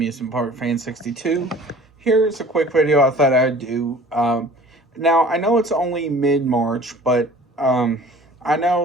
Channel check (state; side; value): normal; both; correlation 0.48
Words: Park Fan 62. Here's a quick video I thought I'd do. Now, I know it's only mid-March, but I